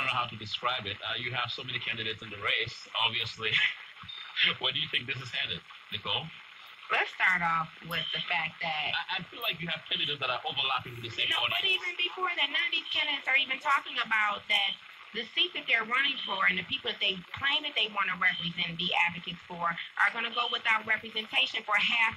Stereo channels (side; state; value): both; identical; correlation 1.00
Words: know how to describe it. You have so many candidates in the race, obviously. Where do you think this is headed, Nicole? Let's start off with the fact that I feel like you have candidates that are overlapping with the same audience. But even before that, none of these candidates are even talking about that the seat that they're running for and the people that they claim that they want to represent and be advocates for are going to go without representation for half